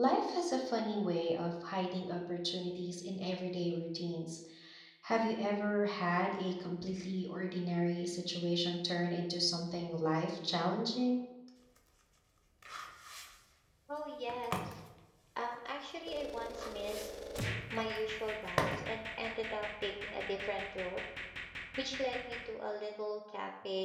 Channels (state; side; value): identical; both; correlation 1.00